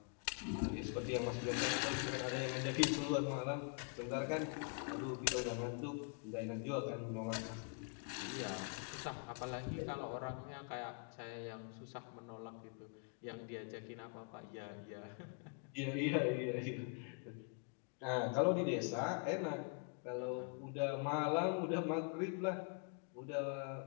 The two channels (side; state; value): right; quieter; 39.3 dB